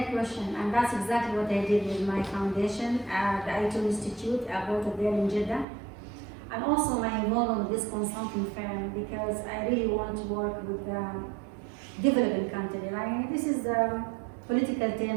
question, and that's exactly what I did with my foundation at the ITO Institute. I bought it there in Jeddah. And also my involvement with this consulting firm because I really want to work with developing countries. I mean, this is the political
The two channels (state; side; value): drops out; left; at 5.7 s